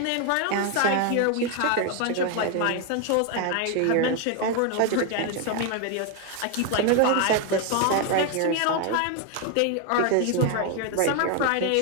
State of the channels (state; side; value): different; both; correlation 0.01